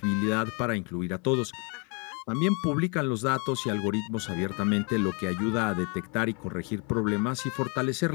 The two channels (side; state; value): right; quieter; 33.5 dB